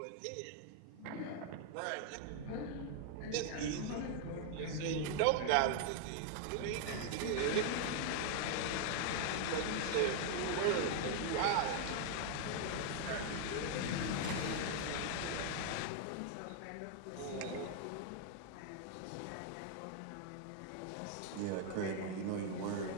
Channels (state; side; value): different; both; correlation 0.00